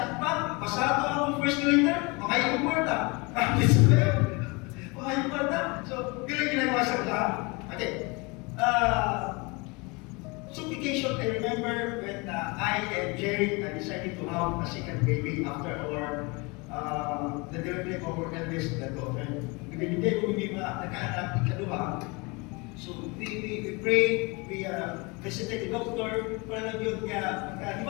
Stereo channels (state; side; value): quieter; right; 27.4 dB